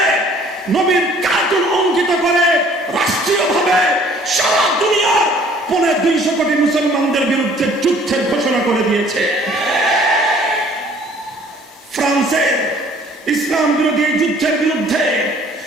নবীর কার্টুন অঙ্কিত করে রাষ্ট্রীয়ভাবে সারা দুনিয়ার 250 কোটি মুসলমানদের বিরুদ্ধে যুদ্ধের ঘোষণা করে দিয়েছে। ফ্রান্সের ইসলাম বিরোধী যুদ্ধের বিরুদ্ধে,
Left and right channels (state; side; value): normal; both; correlation 0.56